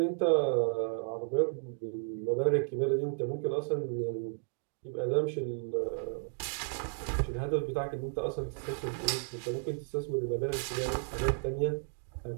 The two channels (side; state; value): left; silent; 56 dB below the other